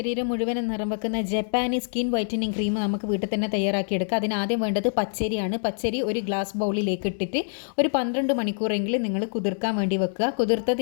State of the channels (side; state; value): right; silent; digital silence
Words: മുഴുവനും നിറം വെക്കുന്ന ജപ്പാനീസ് സ്കിൻ വൈറ്റനിങ് ക്രീം നമുക്ക് വീട്ടിൽ തന്നെ തയ്യാറാക്കിയെടുക്കാം. അതിനാദ്യം വേണ്ടത് പച്ചരിയാണ്. പച്ചരി ഒരു ഗ്ലാസ് ബൗളിലേക്ക് ഇട്ടിട്ട് ഒരു 12 മണിക്കൂറെങ്കിലും നിങ്ങൾ കുതിർക്കാൻ വേണ്ടി വെക്കുക.